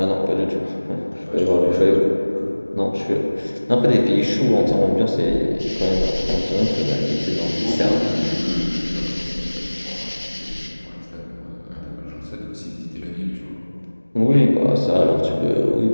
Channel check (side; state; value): both; inverted; correlation -1.00